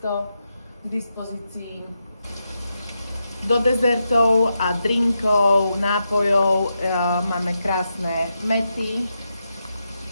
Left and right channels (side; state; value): both; inverted; correlation -0.85